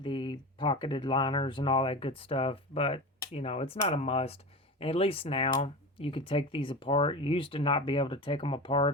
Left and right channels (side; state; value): both; normal; correlation 0.27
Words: pocketed liners and all that good stuff, but you know, it's not a must. And at least now you could take these apart. You used to not be able to take them